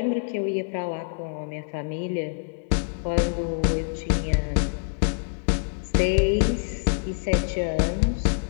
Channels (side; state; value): right; silent; digital silence